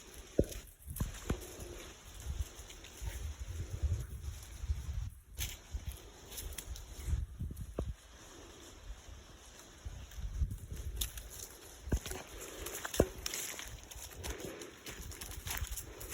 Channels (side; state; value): both; identical; correlation 1.00